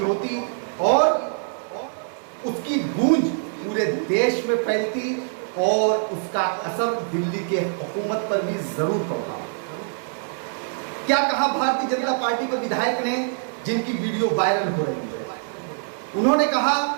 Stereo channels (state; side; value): silent; left; 59 dB below the other